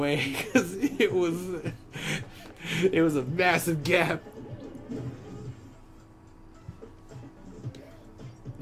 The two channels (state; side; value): identical; both; correlation 1.00